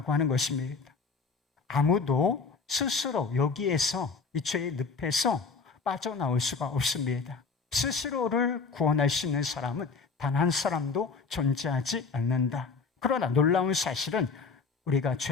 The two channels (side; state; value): right; quieter; 4.7 dB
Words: 하는 것입니다. 아무도 스스로 여기에서 이 죄의 늪에서 빠져나올 수가 없습니다. 스스로를 구원할 수 있는 사람은 단 한 사람도 존재하지 않는다. 그러나 놀라운 사실은 우리가